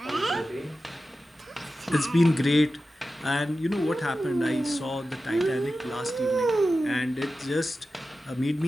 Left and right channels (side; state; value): both; normal; correlation 0.93